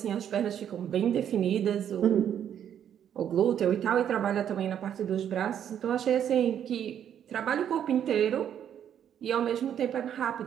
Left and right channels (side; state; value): left; quieter; 9.4 dB